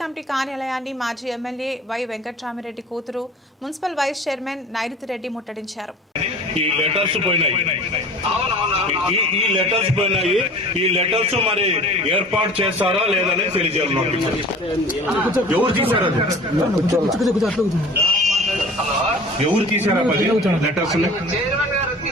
కార్యాలయాన్ని మాజీ ఎమ్మెల్యే వై వెంకట్రామిరెడ్డి కూతురు మున్సిపల్ వైస్ చైర్మన్ నైరుతిరెడ్డి ముట్టడించారు. ఈ లెటర్స్ పోయినాయి. ఈ లెటర్స్ మరి ఏర్పాటు చేస్తారా లేదని తెలియజేయాలి. ఎవరు తీశారు? ఎవరు తీశారా లెటర్స్?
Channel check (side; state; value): both; normal; correlation 0.42